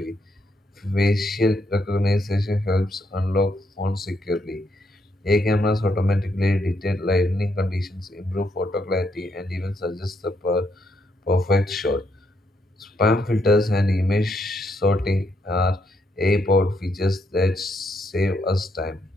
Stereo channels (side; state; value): both; normal; correlation 0.76